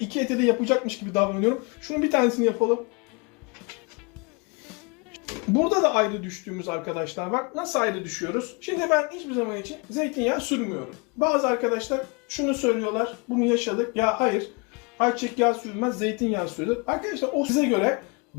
eti de yapacakmış gibi davranıyorum. Şunun bir tanesini yapalım. Burada da ayrı düştüğümüz arkadaşlar var. Nasıl ayrı düşüyoruz? Şimdi ben hiçbir zaman için zeytinyağı sürmüyorum. Bazı arkadaşlar şunu söylüyorlar. Bunu yaşadık. Ya hayır. Ayçiçek yağı sürülmez, zeytinyağı sürülür. Arkadaşlar o size göre.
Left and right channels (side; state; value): right; quieter; 31.0 dB